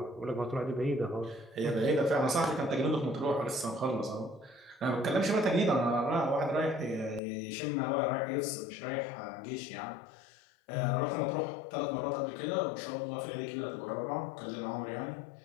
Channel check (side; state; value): right; drops out; at 7.2 s